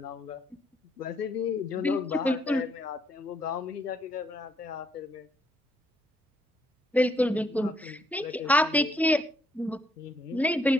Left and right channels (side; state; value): both; normal; correlation 0.72